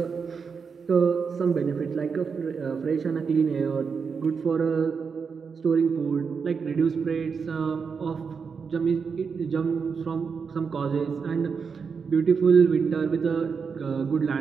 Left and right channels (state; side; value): quieter; left; 5.7 dB